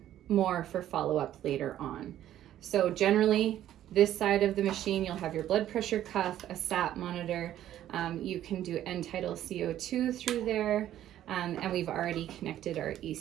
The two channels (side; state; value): left; quieter; 12.1 dB